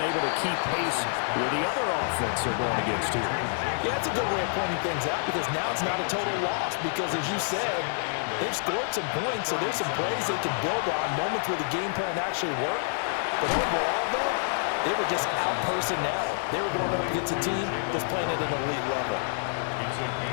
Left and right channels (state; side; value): silent; right; 60 dB below the other